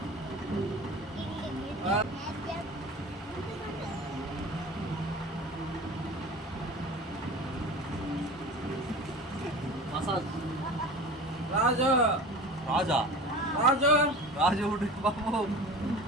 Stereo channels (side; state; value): both; normal; correlation 0.36